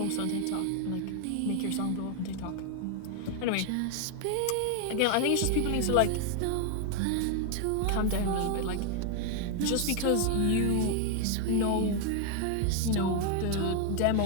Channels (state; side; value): different; both; correlation 0.00